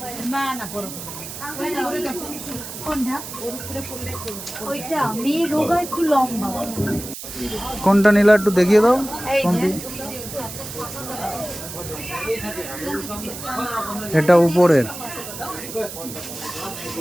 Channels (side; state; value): right; noise; hiss, 10 dB below the sound